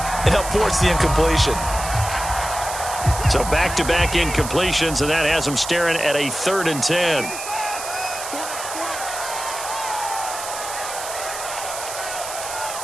and helped force the incompletion. So back-to-back incompletions, and that has him staring at a 3rd and 10.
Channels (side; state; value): right; noise; hiss, 8 dB below the sound